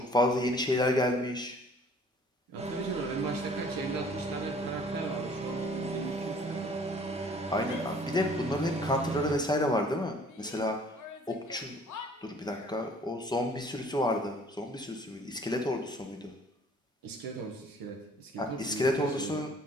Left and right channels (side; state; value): both; normal; correlation 0.54